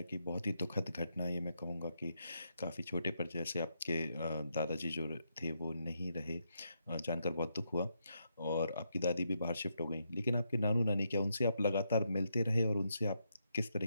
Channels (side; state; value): both; inverted; correlation -0.80